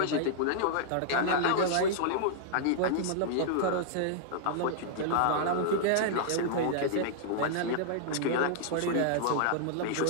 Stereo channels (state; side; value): different; both; correlation -0.01